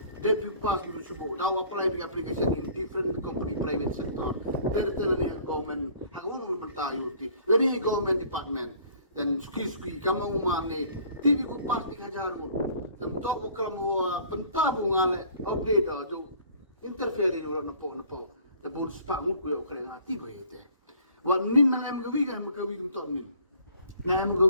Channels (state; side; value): inverted; both; correlation -0.53